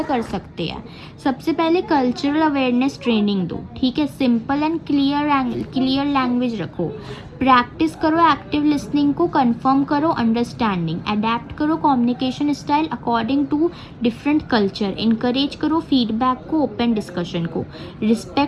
कर सकते हैं? सबसे पहले कल्चरल अवेयरनेस ट्रेनिंग दो। ठीक है, सिंपल एंड क्लियर लैंग्वेज रखो। प्रैक्टिस करो एक्टिव लिसनिंग को, कंफर्म करो अंडरस्टैंडिंग, अडेप्ट करो communication style according to different culture, encourage करो फीडबैक को, ओपन डिस्कशन को,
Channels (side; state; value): both; identical; correlation 1.00